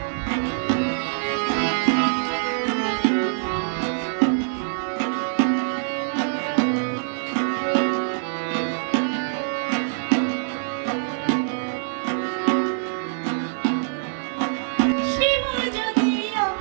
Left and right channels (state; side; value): silent; left; 62 dB below the other